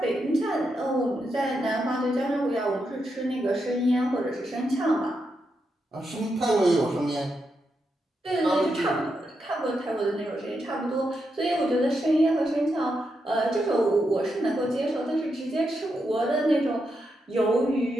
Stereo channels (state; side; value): normal; both; correlation 0.84